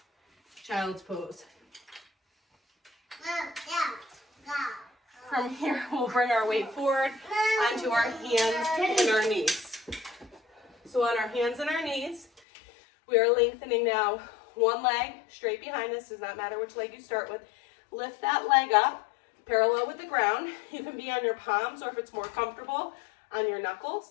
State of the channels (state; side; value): drops out; right; at 12.4 s